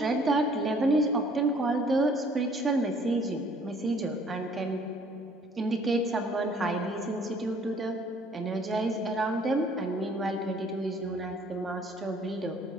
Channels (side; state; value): both; normal; correlation 0.58